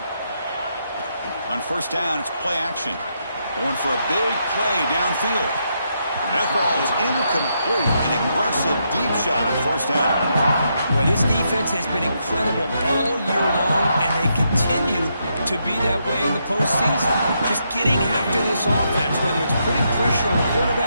On first down, it's play action. Going for a big play downfield. That ball is incomplete. An aggressive deep shot on first down. Well, this defense has been incredible all year long, and they continue to be that way in the postseason. Just getting after this offense, whether it's putting pressure on the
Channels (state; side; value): inverted; both; correlation -0.79